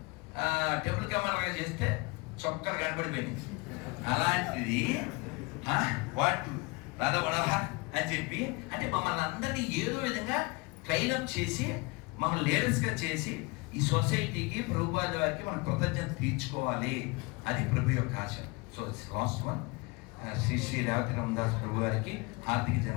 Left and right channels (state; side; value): quieter; right; 26.7 dB